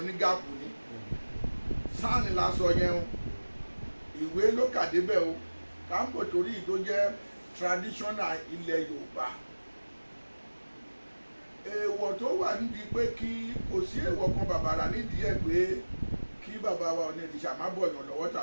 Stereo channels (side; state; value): both; inverted; correlation -1.00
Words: ní gáàpù ni. Sáànì la sọ yẹn o, ìwé ló kà débẹ̀ o, káńpò torí tó jẹ́ traditional ilẹ̀ Yorùbá. Èèwọ̀ tó wà nídìí pé kí kò sí èèwọ̀ kan bàbàrà nídìí ẹ̀ pé kí bàbá wa Ọ̀nìrìṣà má bọ̀yàn lọ́wọ́